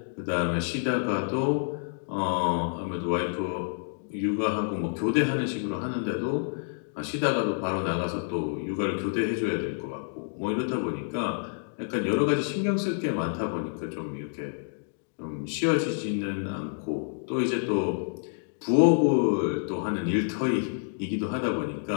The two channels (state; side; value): silent; right; digital silence